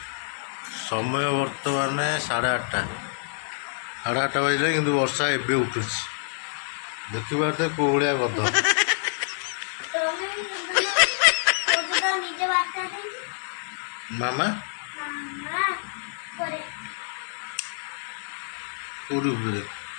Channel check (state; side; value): silent; right; digital silence